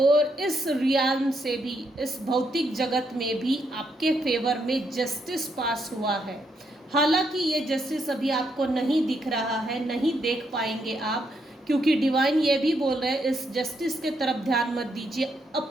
इस रियाल्म से भी, इस भौतिक जगत में भी आपके फेवर में जस्टिस पास हुआ है। हालांकि ये जस्टिस अभी आपको नहीं दिख रहा है, नहीं देख पाएंगे आप, क्योंकि डिवाइन ये भी बोल रहे हैं इस जस्टिस के तरफ ध्यान मत दीजिए,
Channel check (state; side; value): normal; both; correlation 0.77